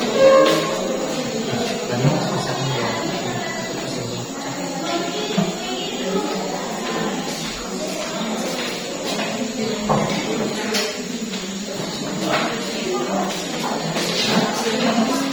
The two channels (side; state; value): both; identical; correlation 1.00